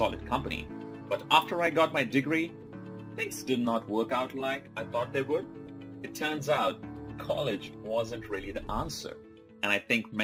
company. But after I got my degree, things did not work out like I thought they would. It turns out college wasn't really the answer. And I think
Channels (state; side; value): identical; both; correlation 1.00